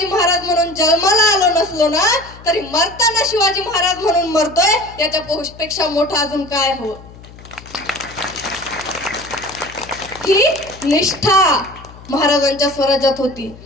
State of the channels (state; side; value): noise; left; hum, 19 dB below the sound